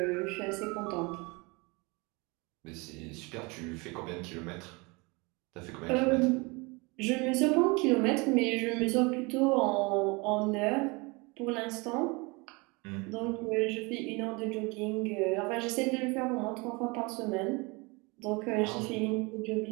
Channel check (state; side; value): quieter; left; 27.2 dB